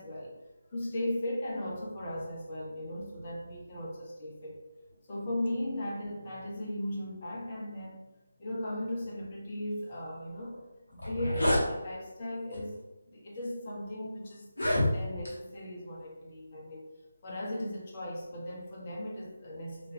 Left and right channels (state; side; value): inverted; both; correlation -0.90